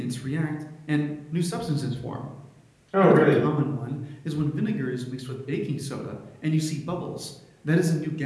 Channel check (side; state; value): both; identical; correlation 1.00